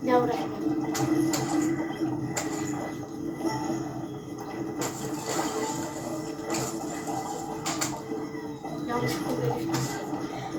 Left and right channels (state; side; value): identical; both; correlation 1.00